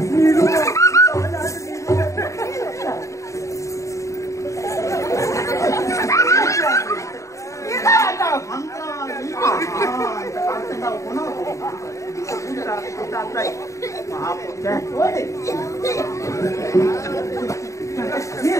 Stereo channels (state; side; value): late; right; 0.15 ms